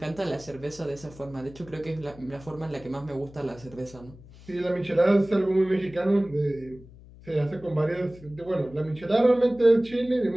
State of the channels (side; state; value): left; noise; hum, 20 dB below the sound